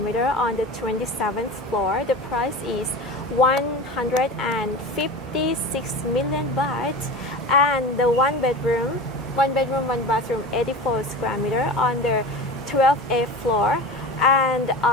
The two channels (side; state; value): both; normal; correlation 0.31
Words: on the 27th floor. The price is 156 million baht, and the one bedroom, one bathroom, 84 square meter on the 12th floor, and